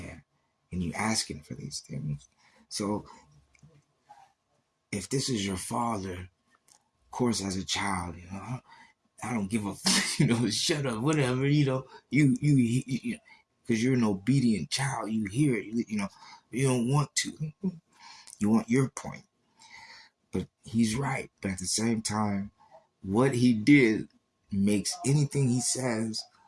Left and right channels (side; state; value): both; identical; correlation 1.00